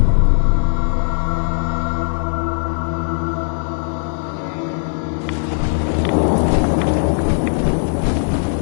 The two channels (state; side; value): silent; right; digital silence